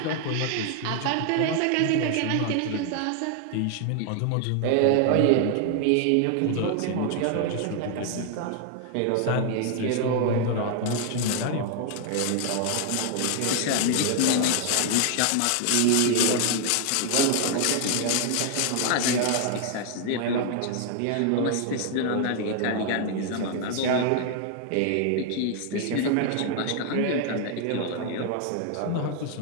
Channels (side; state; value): both; different; correlation 0.00